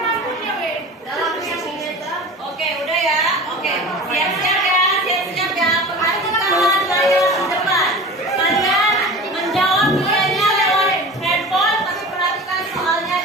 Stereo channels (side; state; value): both; normal; correlation 0.35